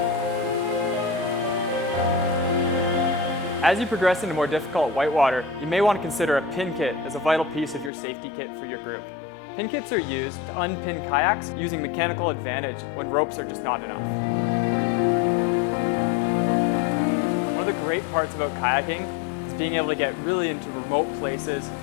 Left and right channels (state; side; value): drops out; right; at 7.9 s